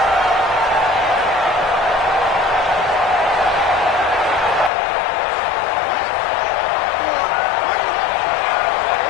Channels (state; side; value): drops out; right; at 4.7 s